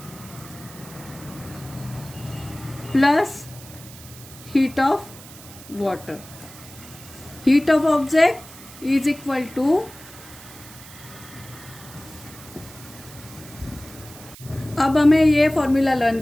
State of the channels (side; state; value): right; noise; hiss, 18 dB below the sound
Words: plus heat of water. Heat of object is equal to, अब हमें ये फॉर्मूला लर्न